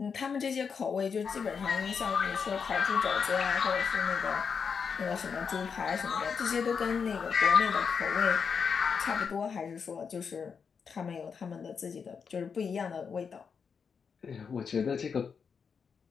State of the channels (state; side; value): quieter; right; 6.2 dB